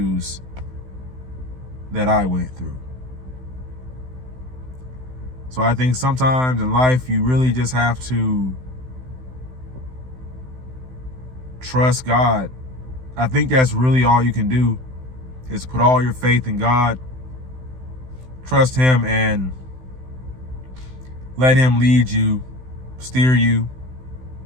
that I went through. So I think sometimes in life, you really just have to trust God. I think that's really all you can do, is put all your faith in God, trust Him, and let Him lead you, steer you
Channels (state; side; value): late; left; 16 ms